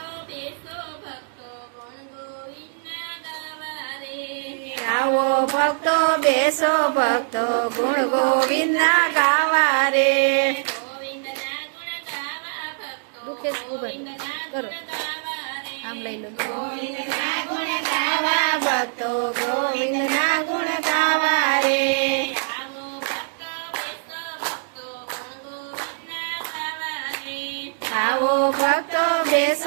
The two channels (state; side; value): silent; left; digital silence